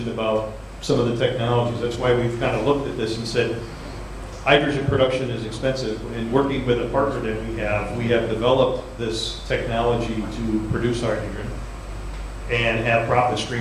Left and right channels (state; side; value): identical; both; correlation 1.00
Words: about some of the technologies. That's why we've kind of looked at this and said, hydrogen production is expensive. And working with a partner that we have developed this technology to produce hydrogen and have profit